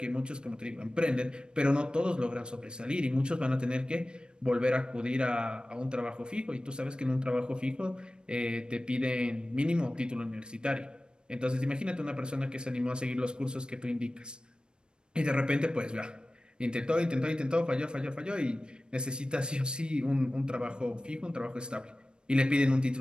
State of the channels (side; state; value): left; late; 0.052 ms